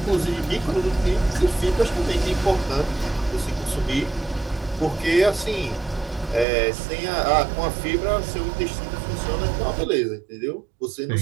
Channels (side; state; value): left; drops out; at 6.5 s